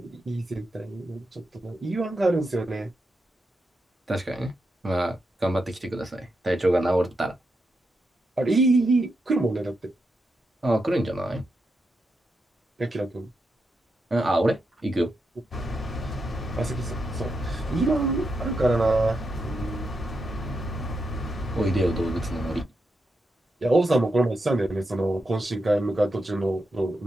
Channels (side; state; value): both; normal; correlation 0.85